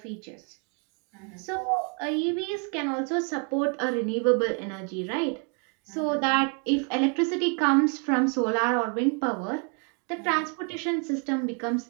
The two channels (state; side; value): quieter; left; 38.0 dB